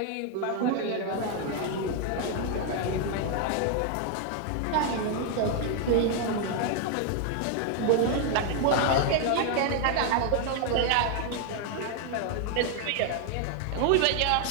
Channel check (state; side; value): different; both; correlation 0.00